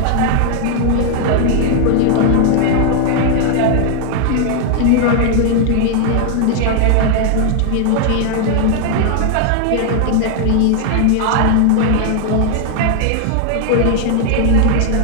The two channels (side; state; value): both; different; correlation 0.00